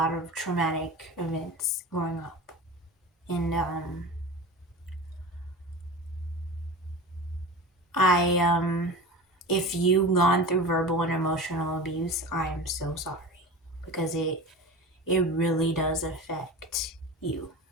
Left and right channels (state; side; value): normal; both; correlation 0.32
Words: of traumatic events growing up, and if you've gone through verbal and emotional abuse, I am so sorry because it really does affect you.